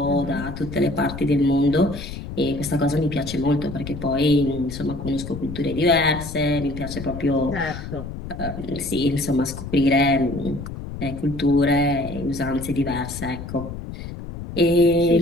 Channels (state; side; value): noise; left; rumble, 9 dB below the sound